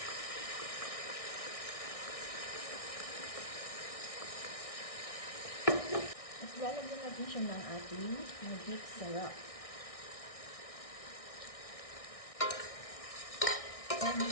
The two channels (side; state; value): right; late; 1.6 ms